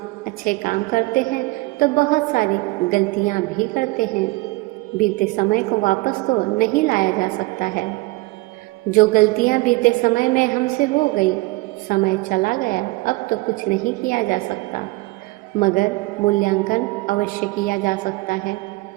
अच्छे काम करते हैं तो बहुत सारी गलतियां भी करते हैं। बीते समय को वापस तो नहीं लाया जा सकता है। जो गलतियां बीते समय में हमसे हो गई, समय चला गया, अब तो कुछ नहीं किया जा सकता, मगर मूल्यांकन अवश्य किया जा सकता है।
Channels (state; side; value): quieter; left; 22.7 dB